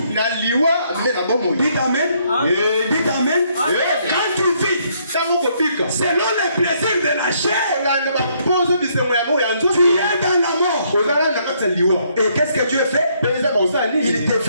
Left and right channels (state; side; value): inverted; both; correlation -0.70